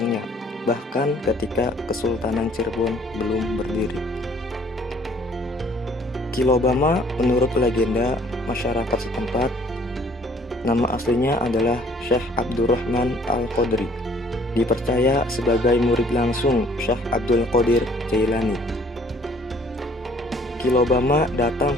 bahkan ketika Kesultanan Cirebon belum berdiri. Ki Lobama menurut legenda masyarakat setempat, nama aslinya adalah Syekh Abdurrahman Al-Qadri, dipercaya sebagai murid langsung Syekh Abdul Qadir Jailani. Ki Lobama datang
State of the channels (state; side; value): normal; both; correlation 0.59